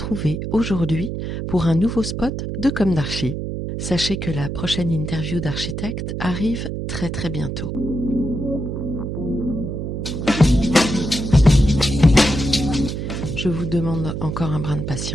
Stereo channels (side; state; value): right; noise; hum, 4 dB below the sound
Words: aujourd'hui pour un nouveau spot de Comme d'Archi. Sachez que la prochaine interview d'architecte arrive très très bientôt. Je vous demande encore un brin de